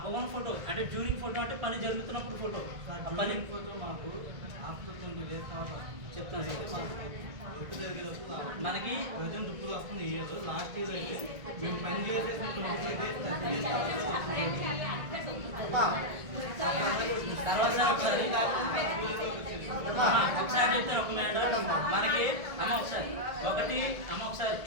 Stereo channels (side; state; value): left; late; 1.6 ms